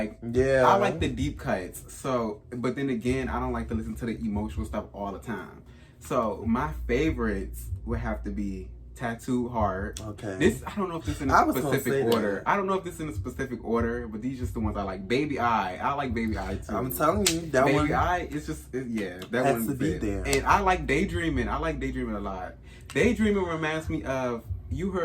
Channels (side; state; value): both; identical; correlation 1.00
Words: yeah, I like the deep cuts. So, but then again, I don't like to listen to the emotional stuff all the time. So my favorites would have to be Tattoo Heart. Okay. This, I don't know if this is in a specific order. I don't know if this is in a specific order, but these are just the ones I like. Baby I like Baby I too. I'm telling you, that Baby one. Baby I, it's just, that has one to be there. And I like Daydreaming. I like Daydreaming a lot. Daydreaming reminds me of, you